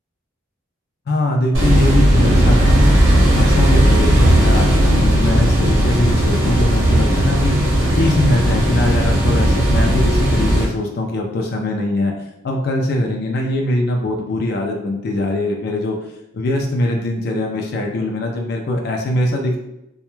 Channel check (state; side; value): normal; both; correlation 0.82